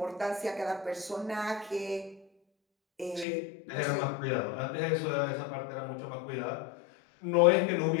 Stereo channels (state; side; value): drops out; right; at 3.2 s